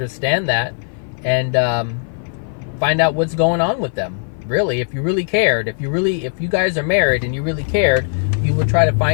that and find out what's going on with them. Really, if you really cared, if you guys are married and you really cared, you would try to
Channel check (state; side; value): silent; right; 56 dB below the other